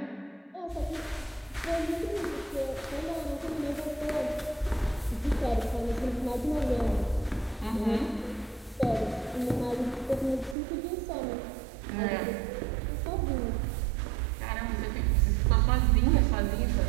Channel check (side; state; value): left; drops out; at 10.6 s